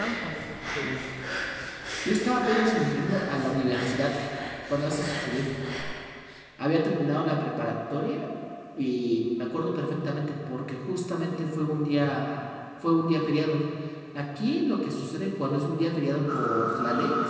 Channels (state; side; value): identical; both; correlation 1.00